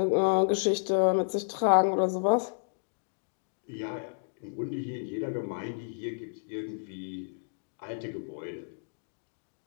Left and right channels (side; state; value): right; silent; digital silence